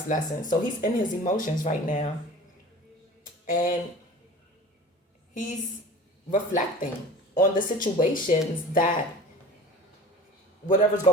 lessons. So he's in his emotions right now, and he's reflecting on the situations that whatever's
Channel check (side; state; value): both; normal; correlation 0.40